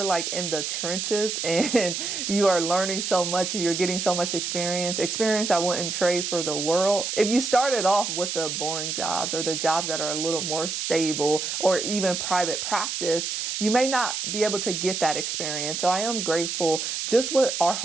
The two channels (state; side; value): noise; right; hiss, 3 dB below the sound